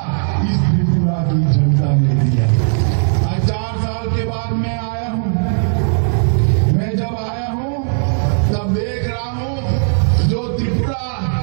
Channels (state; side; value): silent; left; 68 dB below the other